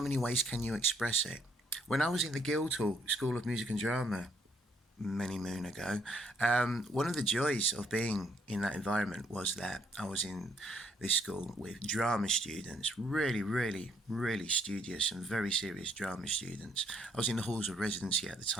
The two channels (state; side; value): normal; both; correlation 0.69